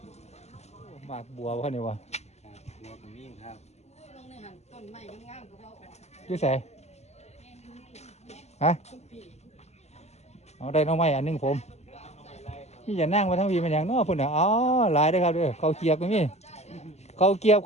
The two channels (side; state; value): right; late; 0.32 ms